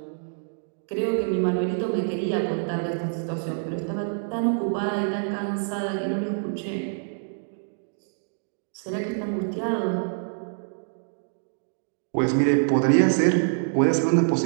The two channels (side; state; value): left; silent; digital silence